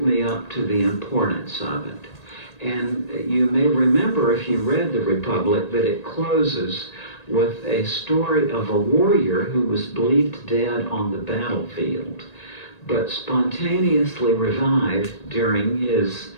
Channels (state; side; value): late; right; 1.8 ms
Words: me up to the importance of it. And you may remember, if you read the Republic, that it closes with a story of a warrior who was believed dead on the battlefield, but spontaneously revived during his